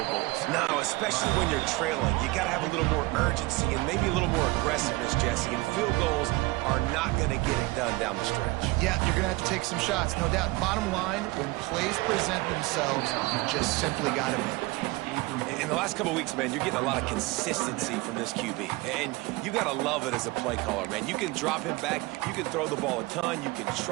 goals. No, especially when you're trailing. You got to have a little more urgency and maybe a little more aggressiveness, Jesse. And field goals are not going to get it done down the stretch. Yeah, you're going to have to take some shots, no doubt. Bottom line, when plays present themselves, you just simply got to make it. In the last couple of weeks, man, you're getting a lot of consistency from this QB. And you got to love it as a play caller, man. You can drop him back. You can throw the ball a ton. You can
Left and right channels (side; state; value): left; quieter; 22.3 dB